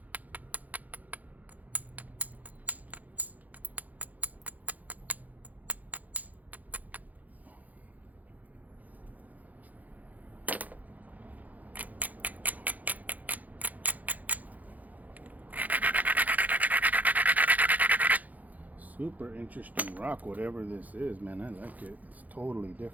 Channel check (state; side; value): late; left; 0.079 ms